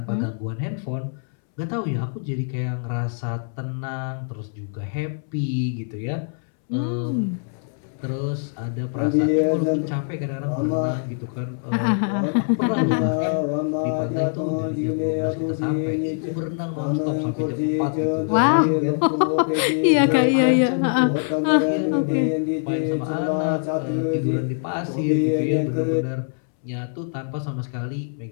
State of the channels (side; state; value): right; silent; 63 dB below the other